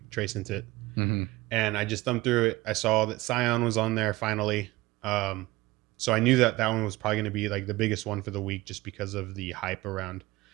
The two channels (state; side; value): quieter; left; 19.8 dB